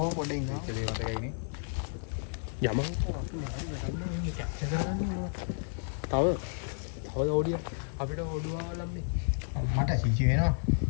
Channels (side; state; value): right; silent; digital silence